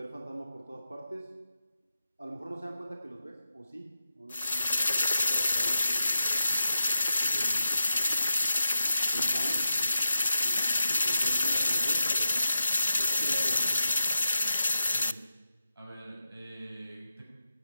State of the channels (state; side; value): inverted; both; correlation -0.89